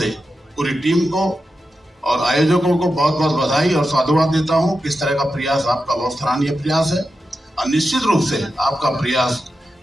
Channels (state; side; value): normal; both; correlation 0.90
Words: पूरी टीम को और आयोजकों को बहुत बहुत बधाई और साधुवाद देता हूं। किस तरह का प्रयास आपका बहुत सराहनीय प्रयास है और निश्चित रूप से आपका प्रयास